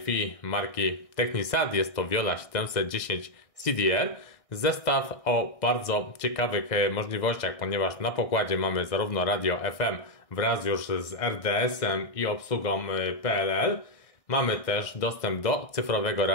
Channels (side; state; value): right; late; 1.6 ms